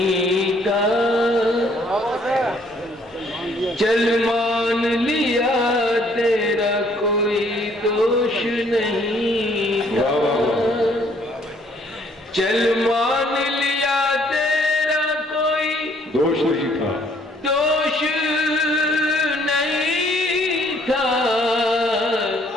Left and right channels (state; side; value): normal; both; correlation 0.63